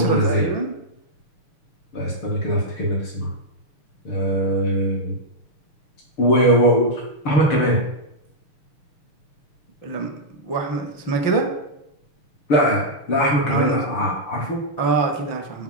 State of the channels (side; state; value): right; late; 6.6 ms